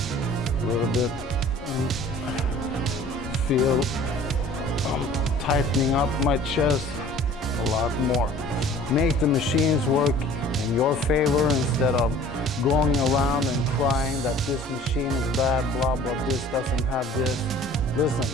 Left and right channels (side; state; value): both; normal; correlation 0.48